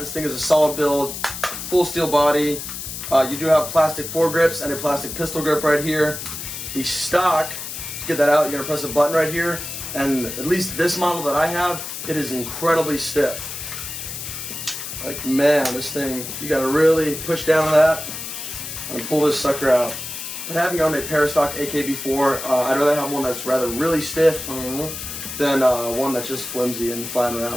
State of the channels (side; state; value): left; noise; hiss, 8 dB below the sound